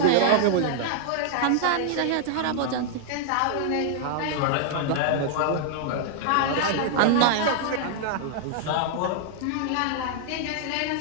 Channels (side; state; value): both; different; correlation -0.01